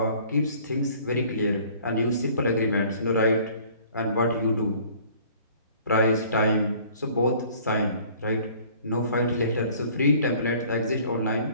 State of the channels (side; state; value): both; inverted; correlation -0.53